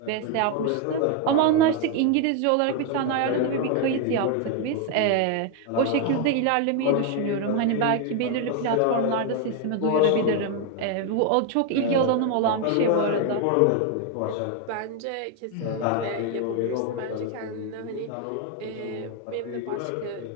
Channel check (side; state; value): both; different; correlation 0.01